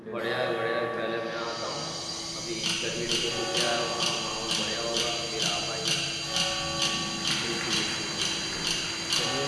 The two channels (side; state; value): both; identical; correlation 1.00